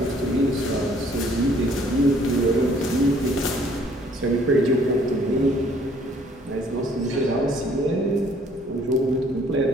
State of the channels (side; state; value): both; normal; correlation 0.60